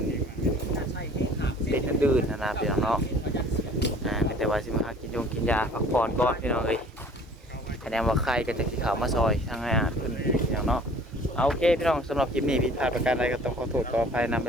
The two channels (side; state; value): both; normal; correlation 0.50